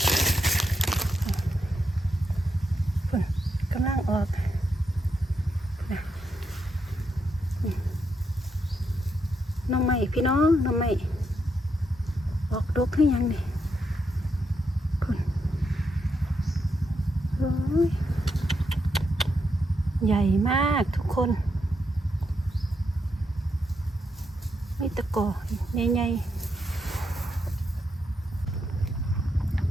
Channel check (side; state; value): both; normal; correlation 0.81